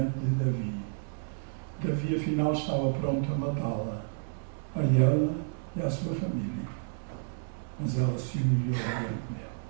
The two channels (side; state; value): left; silent; 57 dB below the other